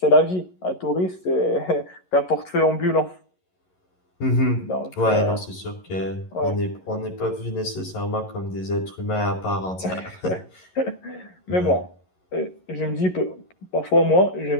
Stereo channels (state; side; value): late; right; 11 ms